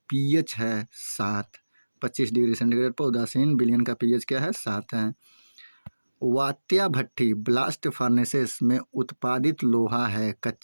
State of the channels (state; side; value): inverted; both; correlation -1.00